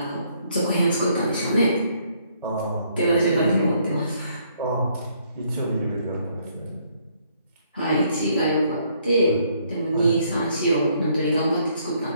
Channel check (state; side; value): inverted; both; correlation -0.68